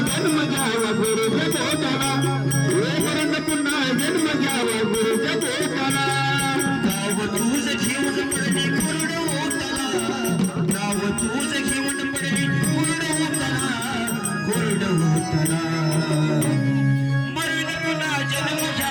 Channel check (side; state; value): both; identical; correlation 1.00